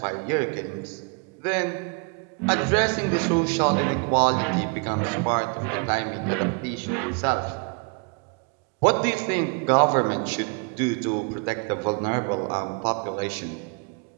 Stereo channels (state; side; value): quieter; left; 35.2 dB